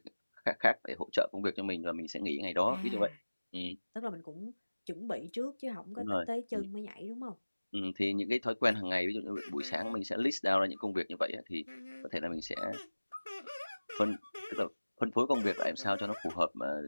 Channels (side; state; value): both; inverted; correlation -1.00